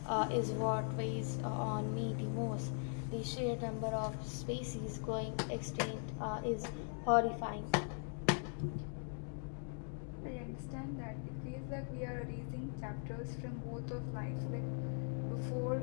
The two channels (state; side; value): silent; right; 51 dB below the other